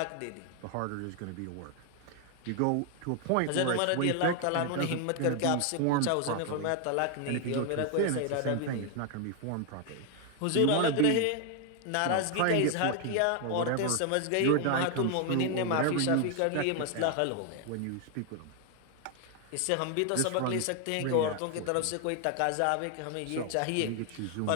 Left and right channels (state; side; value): different; both; correlation 0.00